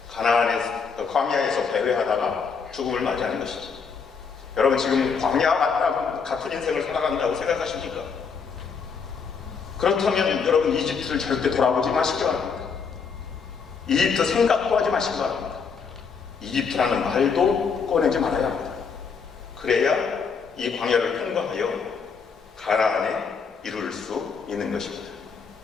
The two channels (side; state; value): right; quieter; 5.7 dB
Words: 광야에서 배회하다가 죽음을 맞이하는 것이죠. 여러분, 지금 광야 같은 인생을 살아간다고 생각하십니까? 그렇다면 여러분, 이집트를 절대 돌아보지 마시기 바랍니다. 이집트 생각도 하지 마시기 바랍니다. 이집트라는 말도 꺼내지 말아야 합니다. 그래야 이 광야를 통과하여 가나안에 이룰 수 있는 것입니다.